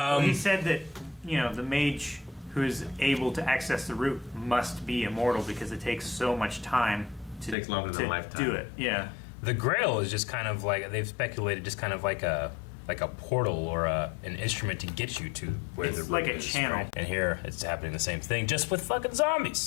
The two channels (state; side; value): drops out; right; at 7.6 s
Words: He said that the mage who is able to access the root must be immortal because it takes so much time It takes longer than a lifetime. do it. Yeah. The Grail is just kind of like, they've speculated, just kind of like a portal or an instrument to get you to where It's the root like a is, channel. right? And here it's happening the same thing, just with fucking